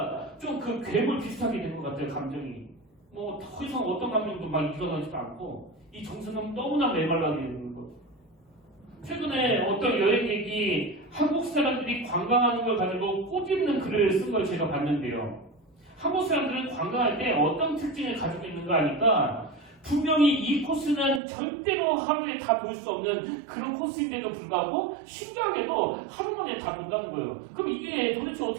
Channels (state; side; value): drops out; left; at 21.2 s